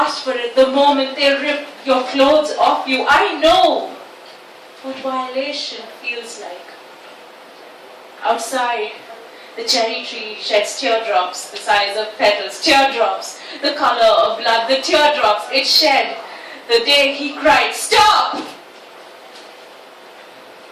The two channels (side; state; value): both; identical; correlation 1.00